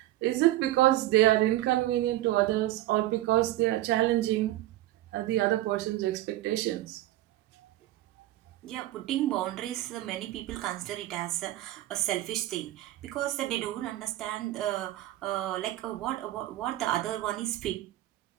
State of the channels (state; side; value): quieter; left; 15.4 dB